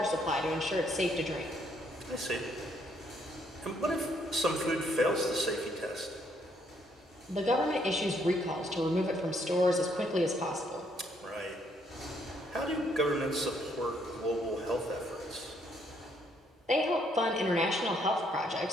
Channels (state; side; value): normal; both; correlation 0.70